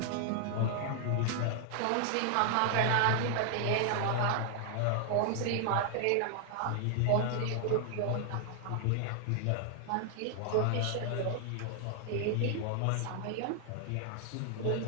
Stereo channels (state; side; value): different; both; correlation 0.00